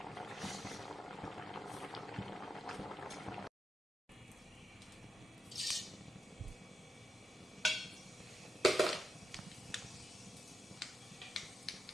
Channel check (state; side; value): normal; both; correlation 0.87